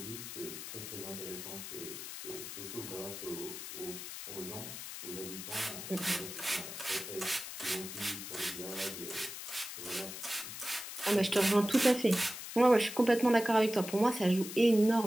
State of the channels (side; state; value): left; noise; hiss, 9 dB below the sound